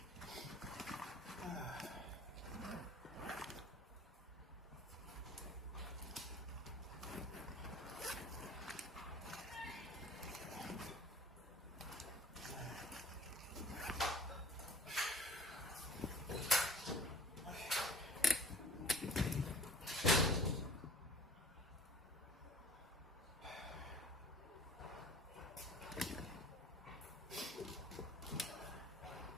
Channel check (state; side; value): normal; both; correlation 0.48